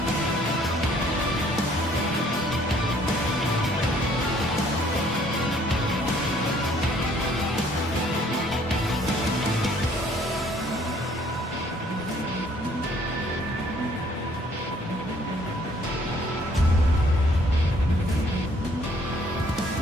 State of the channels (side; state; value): both; normal; correlation 0.61